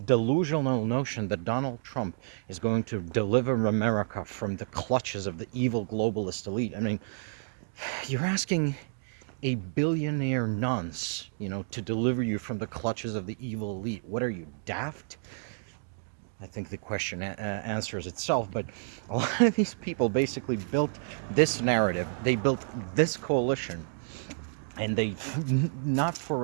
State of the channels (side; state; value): left; silent; digital silence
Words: delusional notion that Donald Trump is going to deliver America from the clutches of the evil globalist elite. I mean, you're asking a billionaire nonce, to deliver you from the clutches of the evil elite. What are you, daft? I think the question answers itself. But a lot of these people basically built this narrative. They built this coalition, and they not for